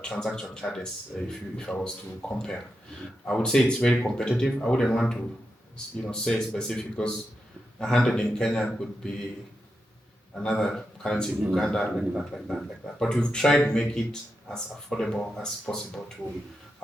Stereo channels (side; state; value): both; normal; correlation 0.87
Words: transaction charges. If I was to compare, I would say it's very competitive. I wouldn't want to, say specific, because 100 in Kenya could be another currency in Uganda, like that. But we've tried to make it as affordable as possible to